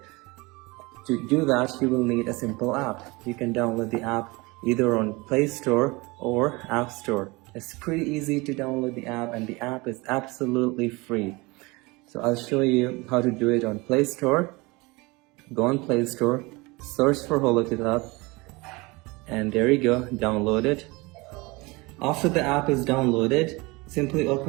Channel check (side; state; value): left; quieter; 24.5 dB